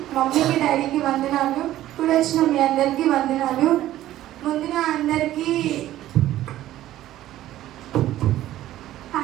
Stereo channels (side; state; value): left; quieter; 13.9 dB